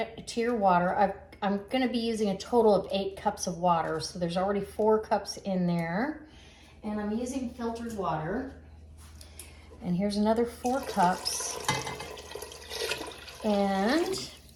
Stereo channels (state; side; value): identical; both; correlation 1.00